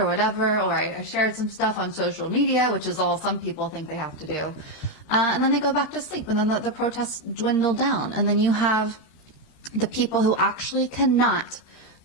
whatever, or I shared some stuff on social media, which is all some people think they have to do. And then they go back to sleep, and then the protests dwindle down. And then you have the people who actually cannot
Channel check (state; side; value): late; right; 13 ms